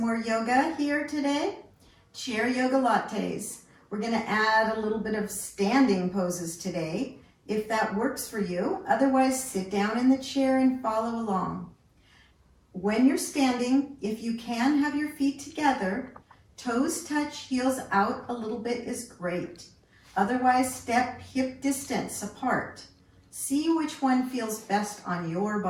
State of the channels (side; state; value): both; identical; correlation 1.00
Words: yoga here today. Chair Yogalates. We're going to add a little bit of standing poses today, if that works for you. Otherwise, sit down in the chair and follow along. When you're standing, if you can have your feet together, toes touch, heels out a little bit is great. Otherwise, step hip distance apart. See which one feels best on your